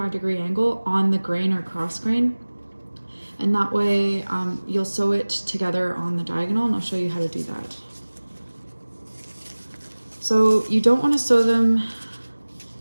angle on the grain or cross grain. And that way you'll sew it together on the diagonal, and I'll show you how to do that. So you don't want to sew them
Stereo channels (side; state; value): both; inverted; correlation -1.00